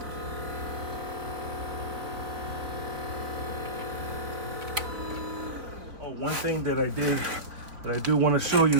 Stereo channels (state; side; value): late; left; 3.8 ms